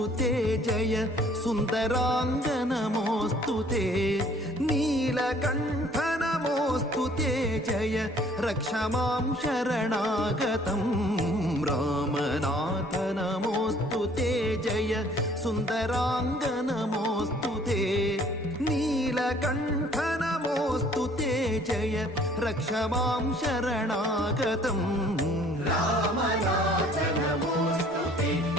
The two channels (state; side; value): normal; both; correlation 0.57